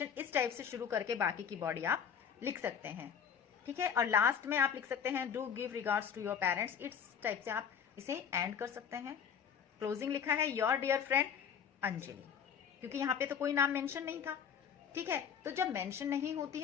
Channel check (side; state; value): right; quieter; 7.6 dB